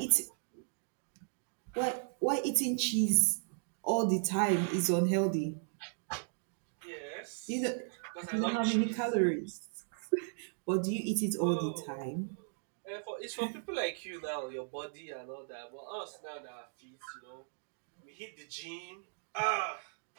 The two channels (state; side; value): silent; left; digital silence